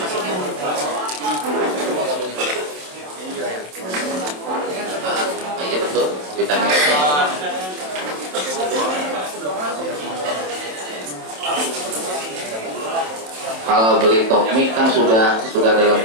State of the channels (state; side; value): late; left; 27 ms